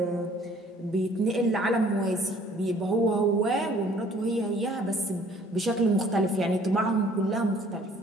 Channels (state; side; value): normal; both; correlation 0.56